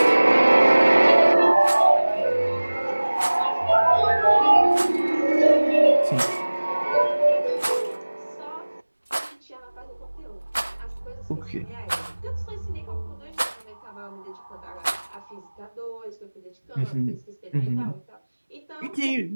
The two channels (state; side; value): inverted; both; correlation -1.00